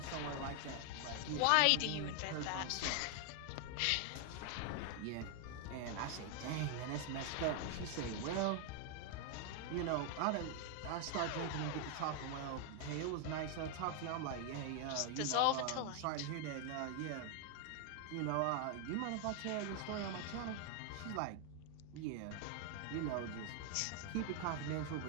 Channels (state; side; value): different; both; correlation 0.00